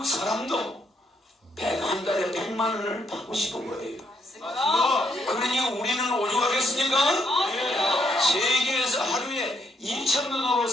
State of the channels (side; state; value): both; normal; correlation 0.74